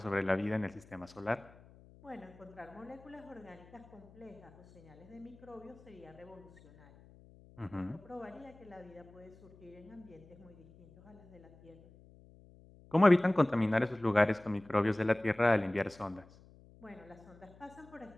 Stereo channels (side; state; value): left; noise; hum, 23 dB below the sound